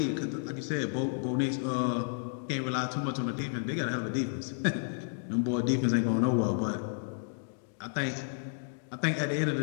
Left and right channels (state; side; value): silent; right; digital silence